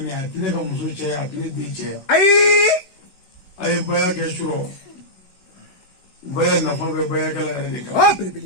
a tɛ ne ka muso cɛya a tɛ ne den cɛya a ye baya kɛ surɔ baya nafa bɛ bayakɛla yɛrɛ de kan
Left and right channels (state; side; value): late; right; 16 ms